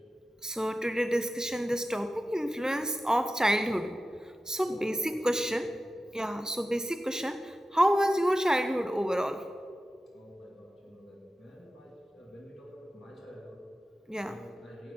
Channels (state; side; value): normal; both; correlation 0.93